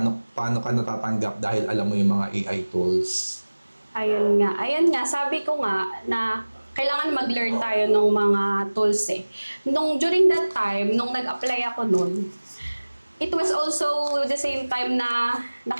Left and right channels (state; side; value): inverted; both; correlation -1.00